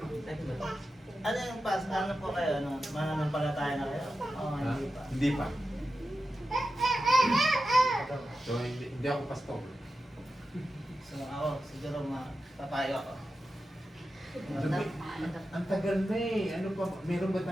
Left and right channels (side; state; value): both; normal; correlation 0.91